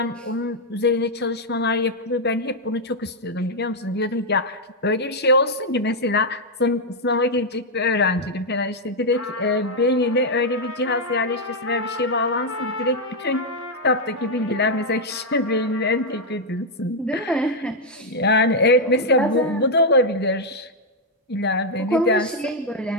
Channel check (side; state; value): both; normal; correlation -0.01